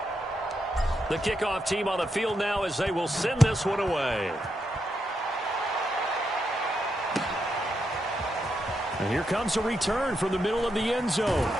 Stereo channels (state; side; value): normal; both; correlation 0.82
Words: The kickoff team on the field now as they will send this one away. And here comes a return from the middle of the end zone.